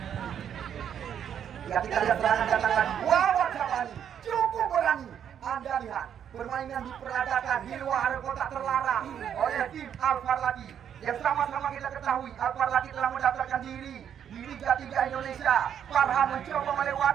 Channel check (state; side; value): quieter; left; 8.9 dB